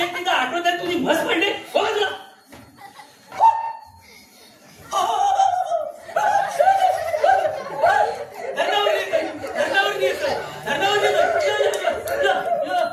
एक मिनिट आठवत आहे तुझी म्हस पडली हो तुला.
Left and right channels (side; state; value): both; identical; correlation 1.00